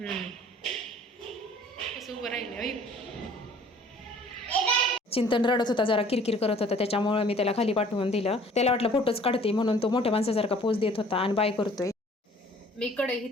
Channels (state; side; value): normal; both; correlation 0.53